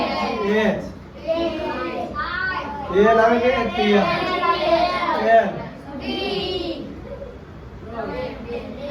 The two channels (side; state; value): both; identical; correlation 1.00